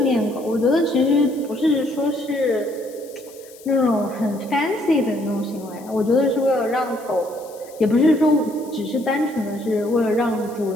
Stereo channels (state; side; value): noise; left; hiss, 23 dB below the sound